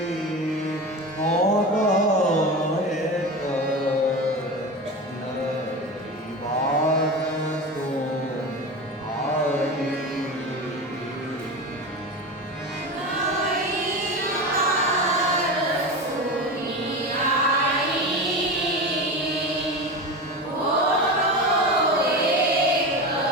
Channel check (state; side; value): normal; both; correlation 0.25